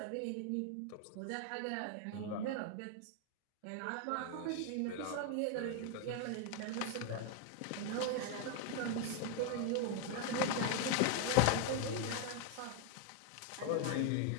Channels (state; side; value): different; both; correlation 0.01